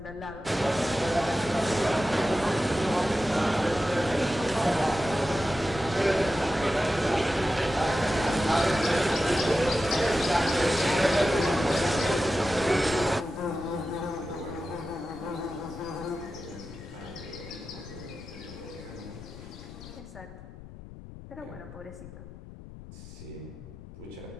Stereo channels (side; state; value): left; noise; rumble, 15 dB below the sound